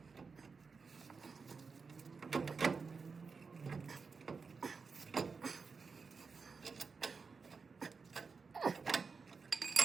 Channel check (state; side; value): quieter; left; 4.9 dB